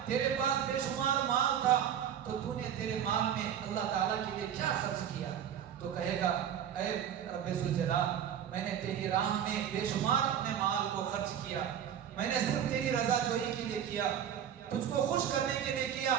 تیرے پاس بے شمار مال تھا، تو تو نے تیرے مال میں اللہ تعالیٰ کے لیے کیا خرچ کیا؟ تو کہے گا اے رب ذوالجلال، میں نے تیری راہ میں بے شمار اپنے مال کو خرچ کیا، میں نے صرف تیری رضا جوئی کے لیے کیا، تجھ کو خوش کرنے کے لیے کیا۔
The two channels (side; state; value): left; quieter; 9.3 dB